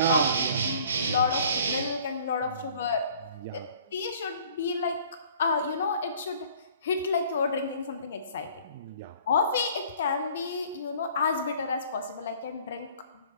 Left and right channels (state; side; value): inverted; both; correlation -0.52